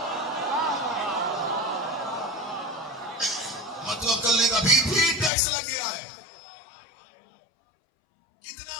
मुतवक्किल ने अभी भी टैक्स लग गया है। कितना?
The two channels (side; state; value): right; drops out; at 5.3 s